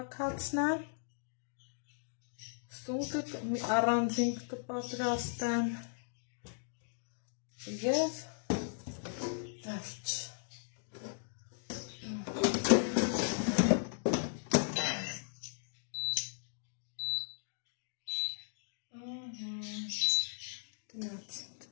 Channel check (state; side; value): silent; right; digital silence